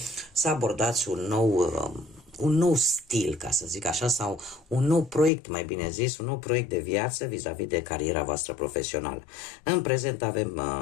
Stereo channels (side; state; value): right; drops out; at 5.3 s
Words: să abordați un nou stil, ca să zic așa, sau un nou proiect, mai bine zis, un nou proiect de viață vis-a-vis de cariera voastră profesională. În prezent avem